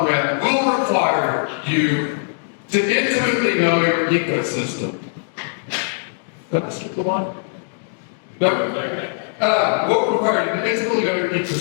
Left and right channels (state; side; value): silent; right; digital silence